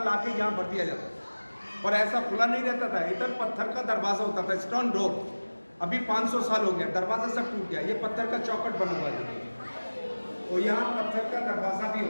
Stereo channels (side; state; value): both; inverted; correlation -1.00